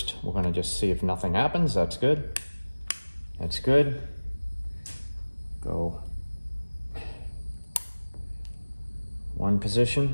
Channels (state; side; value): inverted; both; correlation -1.00